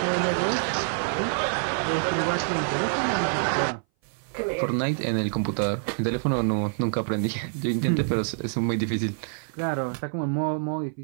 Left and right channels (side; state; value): left; silent; 59 dB below the other